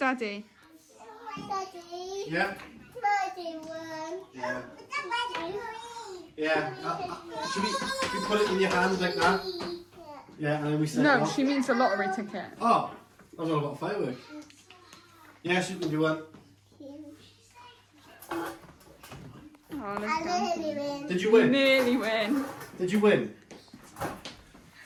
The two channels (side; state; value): both; identical; correlation 1.00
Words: Daddy. Yeah. Daddy one. Yeah. Yeah. Should we put it in your hands like that? Yeah, and then we set it No, off? she means a lottery ticket. Oh, I was all about firework. Yes, you can do one. Oh, let's I go. nearly win. Did you win? Nearly win. Did you win?